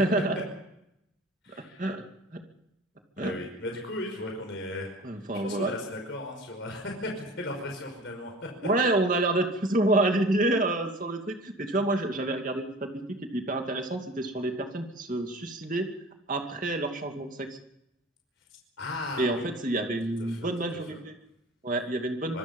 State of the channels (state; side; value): normal; both; correlation 0.42